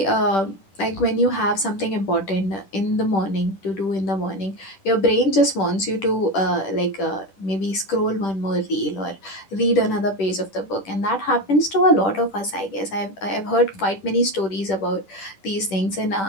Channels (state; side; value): late; right; 10 ms